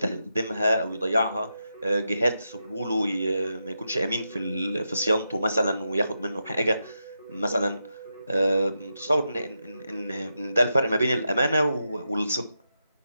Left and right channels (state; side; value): inverted; both; correlation -0.86